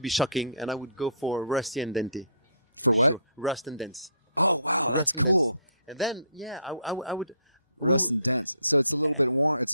be shocking, and I would go for rust and dented. For what? Rust and dents. Oh, wow, that's cool. And then, I would... Rust and dents. So it's a little bit worn. It's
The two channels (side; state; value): both; inverted; correlation -0.60